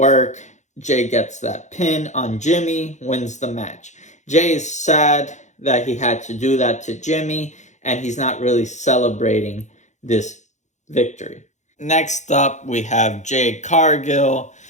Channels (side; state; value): right; late; 0.34 ms